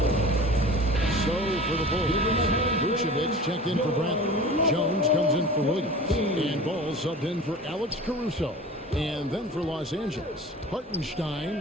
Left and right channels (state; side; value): normal; both; correlation 0.38